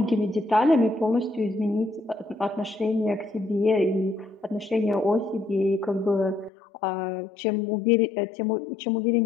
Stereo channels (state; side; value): drops out; right; at 6.5 s